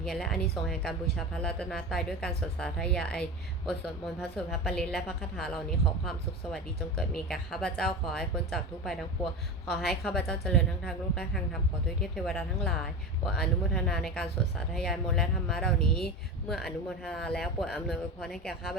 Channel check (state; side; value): normal; both; correlation 0.26